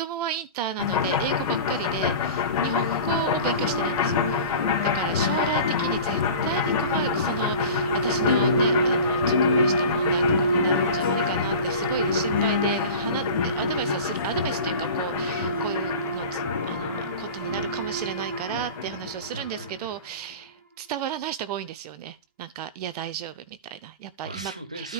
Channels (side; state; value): both; inverted; correlation -0.36